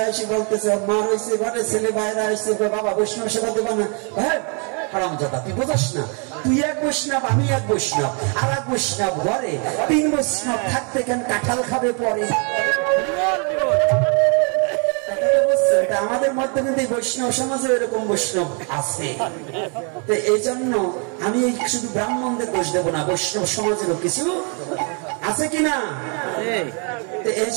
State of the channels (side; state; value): left; quieter; 37.6 dB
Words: এসে বলতেছে, ওর মা রয়েছে ঘরে, ছেলে বাইরে আসছে, বাবা বৈষ্ণব সেবা দেবা না? হ্যাঁ হারামজাদা, তুই বোঝাস না, তুই এক বৈষ্ণব আমি এক বৈষ্ণব, আর এক বৈষ্ণব ঘরে, 3 বৈষ্ণব থাকতে কেন কাঁঠাল খাবে পরে? আমাদের মধ্যে কিন্তু বৈষ্ণব সমাজে এরকম বৈষ্ণব আছে। এই জন্য আমি শুধু ব্রাহ্মণদের দোষ দেবো না, বৈষ্ণব সমাজেরও কিছু আছে কিনা। এই